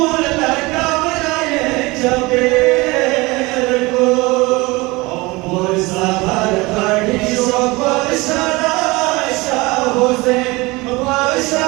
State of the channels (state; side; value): quieter; left; 23.1 dB